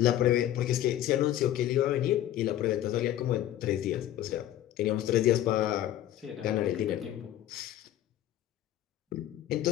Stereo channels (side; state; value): right; quieter; 12.5 dB